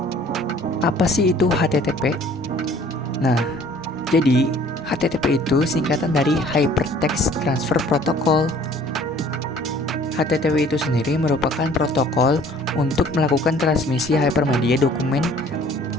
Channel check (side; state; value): both; normal; correlation 0.53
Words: Apa sih itu HTTP? Nah, jadi HTTP itu singkatan dari Hypertext Transfer Protocol. HTTP itu sendiri merupakan protokol untuk melakukan transmisi hypermedia dokumen.